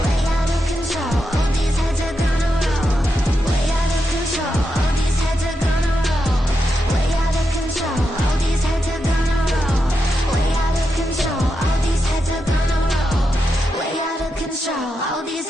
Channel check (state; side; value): normal; both; correlation 0.86